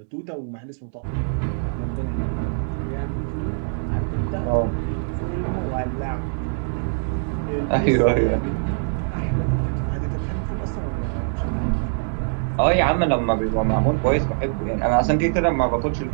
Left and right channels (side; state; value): left; silent; digital silence